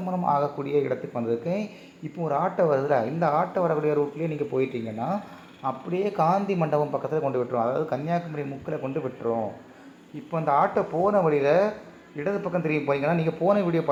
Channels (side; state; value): both; identical; correlation 1.00